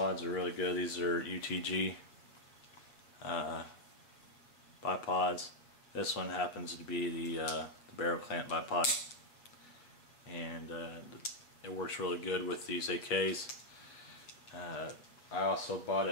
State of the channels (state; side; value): late; right; 8.0 ms